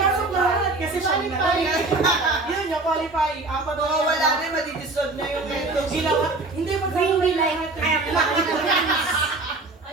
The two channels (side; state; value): left; quieter; 3.3 dB